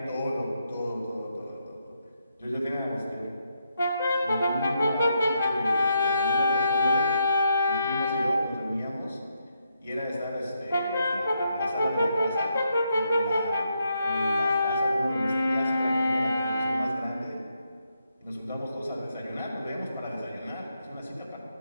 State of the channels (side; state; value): both; inverted; correlation -0.80